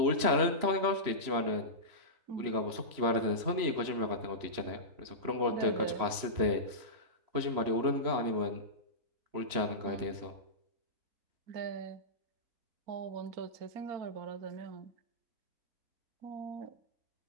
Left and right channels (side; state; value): left; late; 3.1 ms